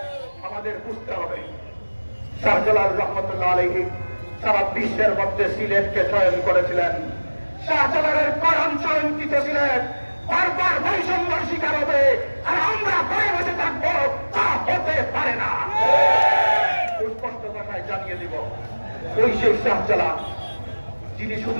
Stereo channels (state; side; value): inverted; both; correlation -1.00